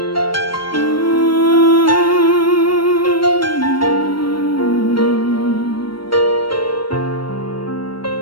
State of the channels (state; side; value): late; right; 0.73 ms